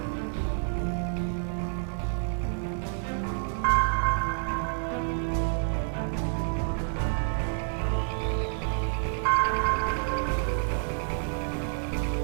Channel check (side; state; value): left; silent; 59 dB below the other